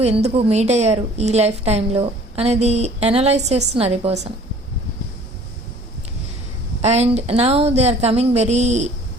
ఎందుకు మీట్ అయ్యారు ఈ లైఫ్ టైంలో అనేది అనలైజ్ చేస్తున్నారు ఈ person. And now they are coming very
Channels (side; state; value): both; normal; correlation 0.52